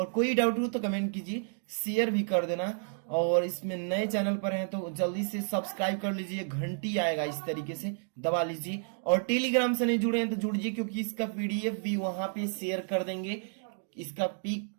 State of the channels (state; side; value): silent; left; digital silence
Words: कोई डाउट हो तो कमेंट कीजिए, शेयर भी कर देना। और इसमें नए चैनल पर हैं तो जल्दी से सब्सक्राइब कर लीजिए, घंटी आएगा इस तरीके से दबा लीजिए। और टेलीग्राम से नहीं जुड़े हैं तो जुड़िए, क्योंकि इसका पीडीएफ भी वहां पे शेयर कर देंगे, इसका पिक